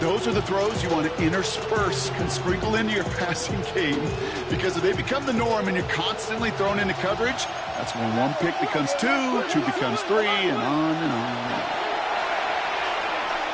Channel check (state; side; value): identical; both; correlation 1.00